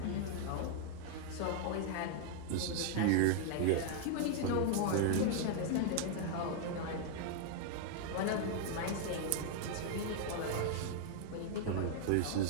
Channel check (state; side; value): different; both; correlation 0.00